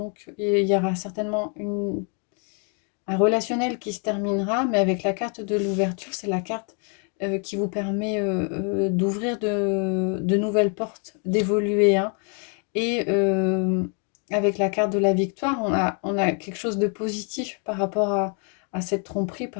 il y aura certainement un relationnel qui se terminera, mais avec la carte de l'ouverture, c'est la carte qui vous permet d'ouvrir de nouvelles portes, d'évoluer, hein. Et avec la carte de la victoire, on a quelque chose de positif par rapport à cette tromperie,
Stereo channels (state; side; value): quieter; right; 39.5 dB